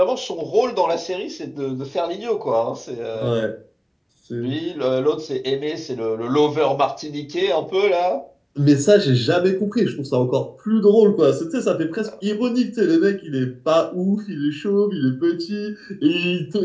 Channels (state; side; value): identical; both; correlation 1.00